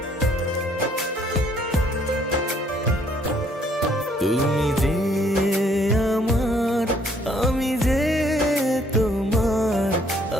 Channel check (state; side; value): normal; both; correlation 0.65